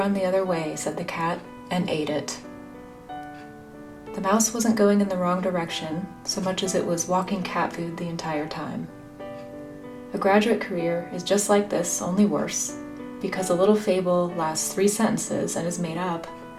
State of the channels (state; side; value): identical; both; correlation 1.00